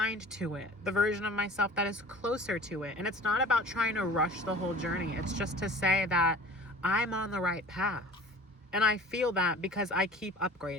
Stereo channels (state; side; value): normal; both; correlation 0.43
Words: to it, the version of myself that is closer to it. And it's not about trying to rush the whole journey. It's just to say that I'm on the right path. And I feel that because I keep